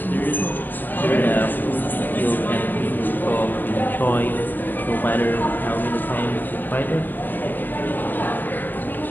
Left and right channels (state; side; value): late; right; 0.090 ms